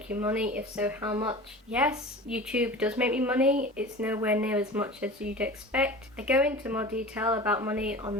you money? If so, how much? Yes, YouTube does make me money. It's nowhere near as much as you'd expect. I go into more detail about money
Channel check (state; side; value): normal; both; correlation 0.36